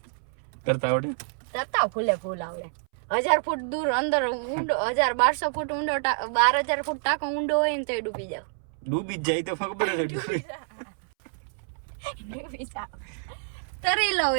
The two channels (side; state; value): left; silent; 60 dB below the other